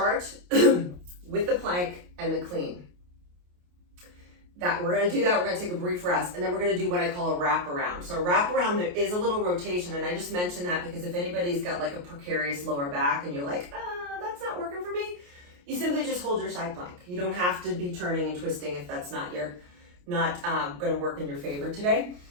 with the plank and the clean. We're going to do that. We're going to take a brief rest, and then we're going to do what I call a wrap around. So a wrap around, there is a little rotation, and I just mentioned that because if anybody's got like a precarious lower back and you're like, that's not working for me, you simply just hold your side plank. You don't have to be turning and twisting if that's not going to work in your favor today.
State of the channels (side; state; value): left; late; 28 ms